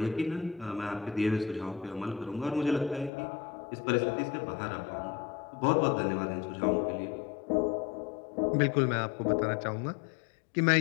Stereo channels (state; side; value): drops out; right; at 3.1 s